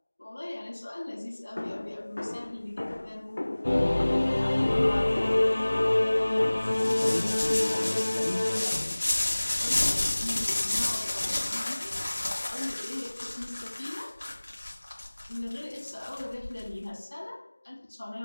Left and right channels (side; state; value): both; inverted; correlation -1.00